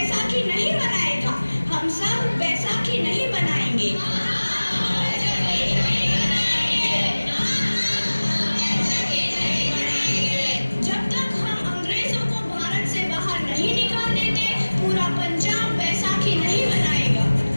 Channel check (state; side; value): inverted; both; correlation -1.00